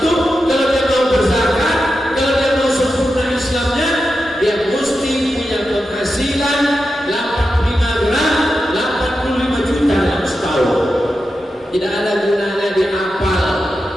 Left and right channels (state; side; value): normal; both; correlation 0.89